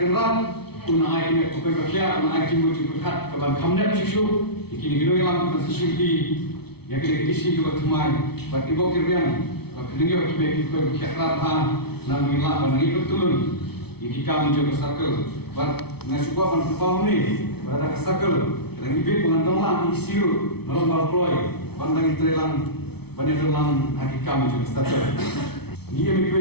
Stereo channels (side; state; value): right; late; 0.97 ms